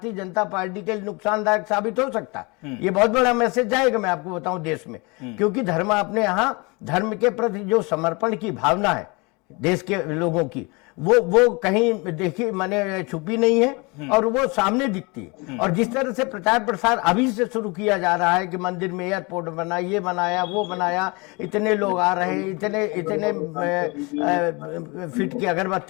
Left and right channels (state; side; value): quieter; right; 27.9 dB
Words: जनता पार्टी के लिए नुकसानदायक साबित हो सकता है। ये बहुत बड़ा मैसेज जाएगा, मैं आपको बताऊं, देश में, क्योंकि धर्म अपने यहाँ धर्म के प्रति जो समर्पण की भावना है देश के लोगों की, वो कहीं देखी मैंने छुपी नहीं है और वो सामने दिखती है। और जिस तरह से प्रचार प्रसार अभी से शुरू किया जा रहा है कि मंदिर में एयरपोर्ट बना, ये बनाया, वो बनाया, इतने लोग आ रहे हैं, इतने फीट की